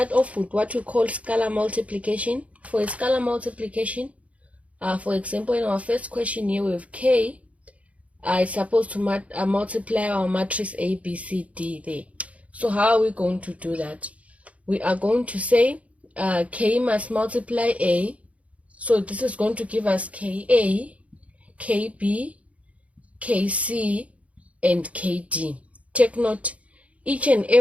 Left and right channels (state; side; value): late; left; 0.066 ms